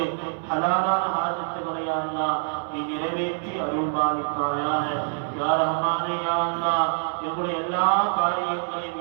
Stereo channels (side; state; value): left; silent; 61 dB below the other